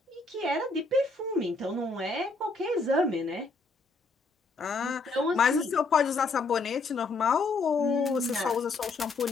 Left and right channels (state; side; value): quieter; right; 3.7 dB